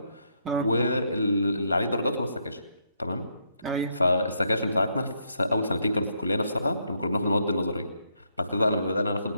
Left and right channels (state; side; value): inverted; both; correlation -0.75